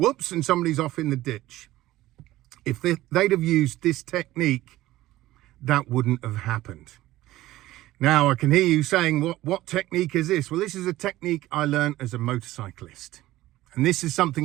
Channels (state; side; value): quieter; left; 16.2 dB